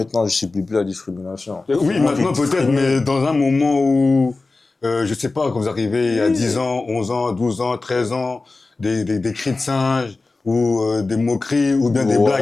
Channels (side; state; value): right; quieter; 3.5 dB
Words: je ne subis plus la discrimination. Oui, maintenant peut-être, mais dans un moment où, je ne sais pas, quand vous arrivez il y a 10 ans, 11 ans, 12 ans, 13 ans, des cris de singe, ou des moqueries, ou bien des